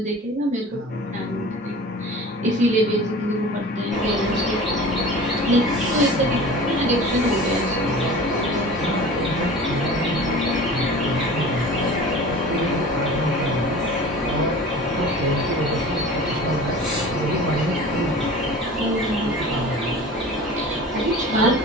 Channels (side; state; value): both; normal; correlation 0.39